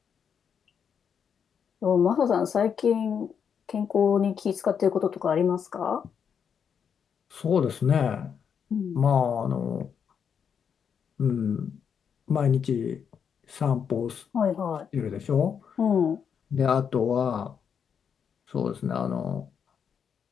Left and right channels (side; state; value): right; quieter; 7.3 dB